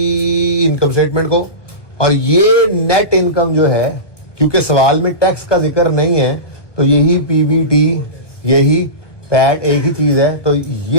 इनकम स्टेटमेंट को, और ये नेट इनकम जो है, क्योंकि सवाल में टैक्स का जिक्र नहीं है, तो यही पीबीटी, यही पैट एक ही चीज है। तो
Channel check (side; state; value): right; late; 1.1 ms